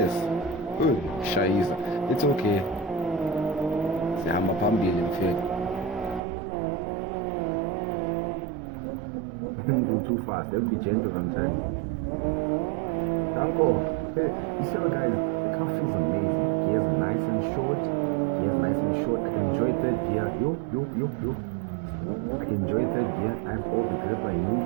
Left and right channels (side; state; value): left; drops out; at 6.2 s